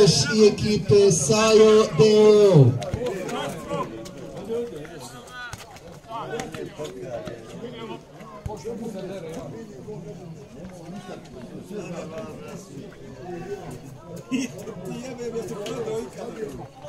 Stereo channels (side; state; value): both; identical; correlation 1.00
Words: i ekipe Sajo Deo.